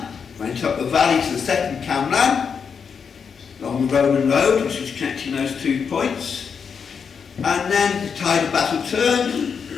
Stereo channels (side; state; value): right; quieter; 6.3 dB